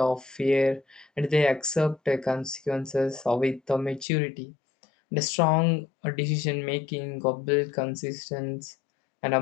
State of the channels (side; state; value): right; drops out; at 4.0 s